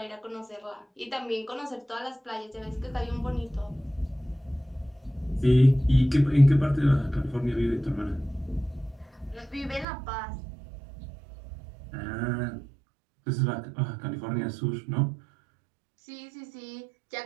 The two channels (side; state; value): left; drops out; at 9.9 s